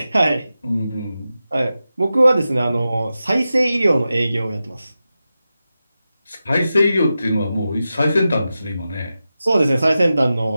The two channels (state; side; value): inverted; both; correlation -0.92